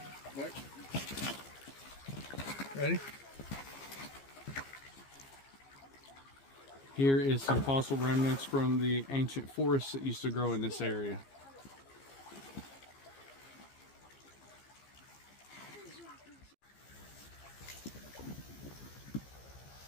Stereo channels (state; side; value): late; right; 15 ms